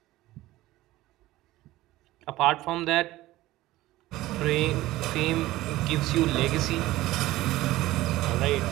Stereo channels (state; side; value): quieter; left; 17.0 dB